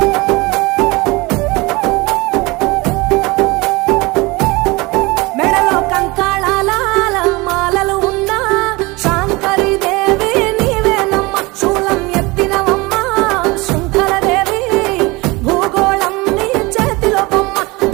మెడలో కంకాళాల మాలలు ఉన్నా శాంకరి దేవి నీవేనమ్మ శూలం ఎత్తినవమ్మ శృంఖలదేవి భూగోళం నీ చేతిలో బొమ్మ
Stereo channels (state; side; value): quieter; left; 23.7 dB